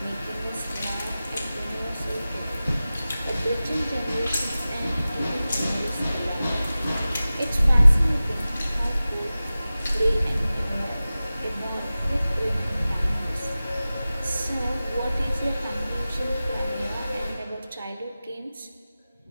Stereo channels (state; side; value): inverted; both; correlation -0.96